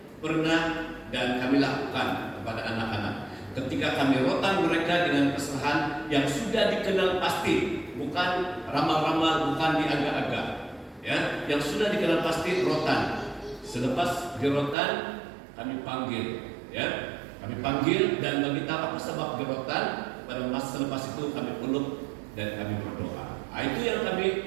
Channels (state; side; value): drops out; left; at 14.8 s